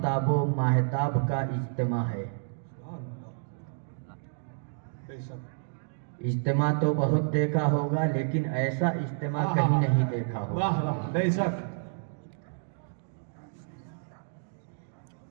و ماہتاب کا اجتماع ہے. اجتماع تو بہت دیکھا ہوگا, لیکن ایسا اجتماع کہیں نہیں دیکھا ہوگا. واہ واہ, بے شک.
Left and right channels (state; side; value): silent; left; digital silence